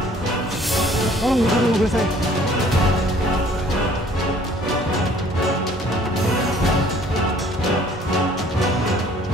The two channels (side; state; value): both; normal; correlation 0.56